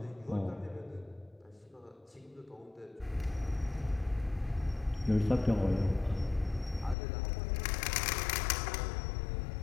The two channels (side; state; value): right; drops out; at 7.0 s